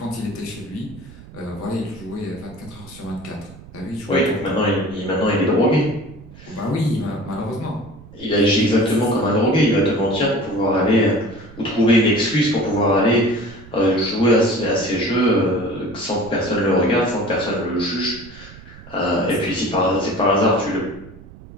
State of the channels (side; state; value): right; noise; rumble, 19 dB below the sound